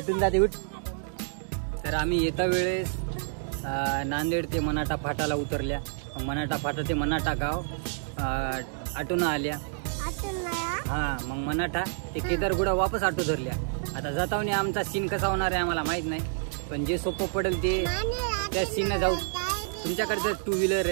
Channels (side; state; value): left; silent; digital silence